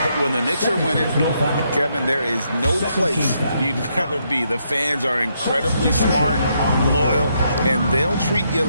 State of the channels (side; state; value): both; inverted; correlation -0.77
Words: When the Knicks are winning, Kevin, there is no place you'd rather be. The fans are incredibly smart, loyal, and they'll treat you